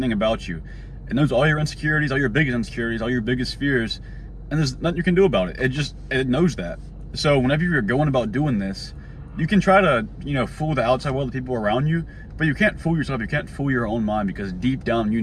about you. It knows all your insecurities, all your biggest insecurities, all your biggest fears, and there's nothing you can do about it. It knows that. So whenever you're going about doing this, you can try to, fool the outside world, the people around you, but you can't fool yourself. You can't fool your own mind, because deep down,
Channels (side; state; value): both; identical; correlation 1.00